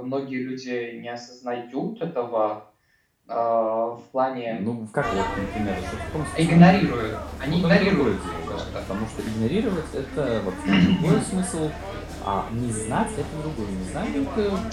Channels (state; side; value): identical; both; correlation 1.00